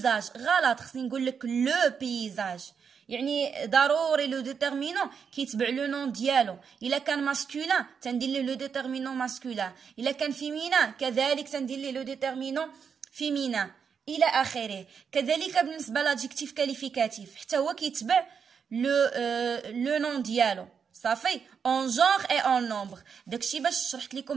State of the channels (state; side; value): quieter; left; 6.6 dB